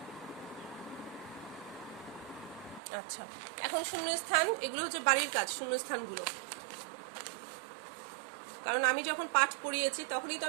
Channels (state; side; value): drops out; left; at 2.8 s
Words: আচ্ছা, এখন শূন্যস্থান, এগুলো হচ্ছে বাড়ির কাজ, শূন্যস্থানগুলো। কারণ আমি যখন পাঠ পড়িয়েছি তখনই তো